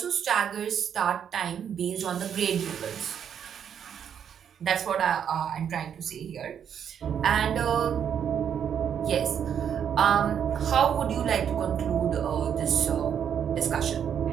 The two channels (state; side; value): quieter; left; 8.4 dB